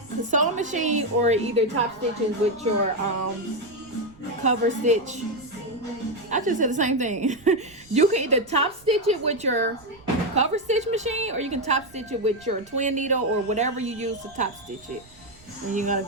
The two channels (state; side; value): noise; right; rumble, 26 dB below the sound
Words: machine or either top stitches with your cover stitch. I just said the same thing. You can either top stitch it with your cover stitch machine, or you can top stitch it with your twin needle or whatever you use to top stitch it. And you're gonna